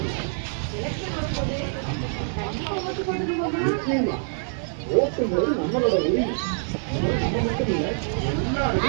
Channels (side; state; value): left; silent; 57 dB below the other